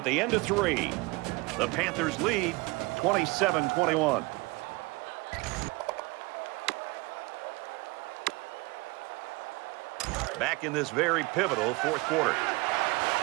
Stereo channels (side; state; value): left; quieter; 24.6 dB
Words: the end of 3, the Panthers lead 27-21. Back in this very pivotal 4th quarter.